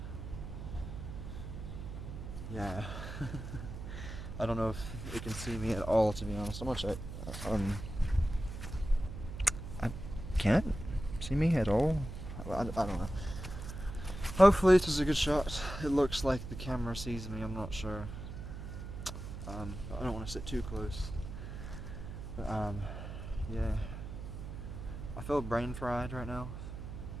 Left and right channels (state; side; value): noise; right; hum, 9 dB below the sound